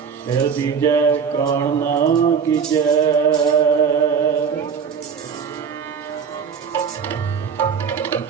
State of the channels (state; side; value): quieter; left; 6.6 dB